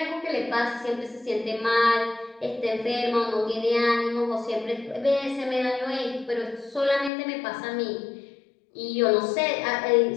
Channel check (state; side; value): drops out; right; at 7.1 s